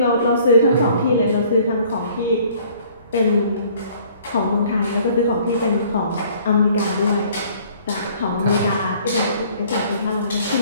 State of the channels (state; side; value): inverted; both; correlation -0.56